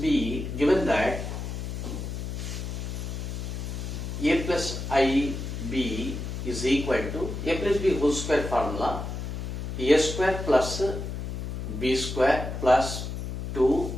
given that a plus ib is equal to a plus b whole square formula, a square plus b square plus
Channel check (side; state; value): left; noise; hum, 5 dB below the sound